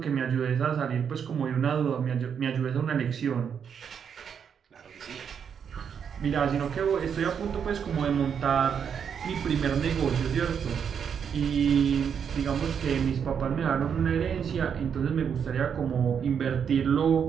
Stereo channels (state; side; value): quieter; left; 7.4 dB